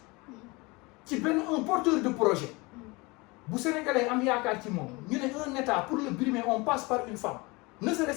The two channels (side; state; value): right; quieter; 25.1 dB